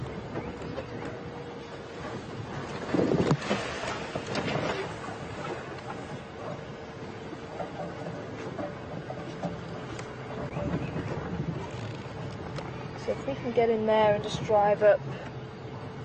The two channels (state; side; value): identical; both; correlation 1.00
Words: So if we can get in there and just drive up,